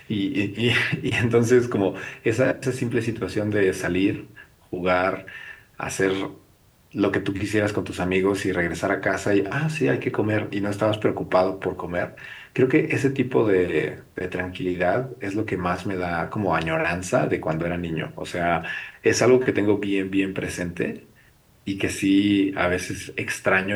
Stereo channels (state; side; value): identical; both; correlation 1.00